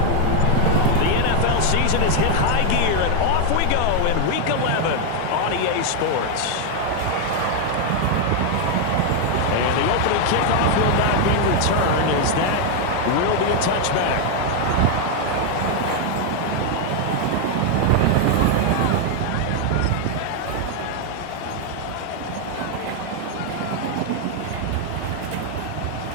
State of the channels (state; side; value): different; both; correlation 0.01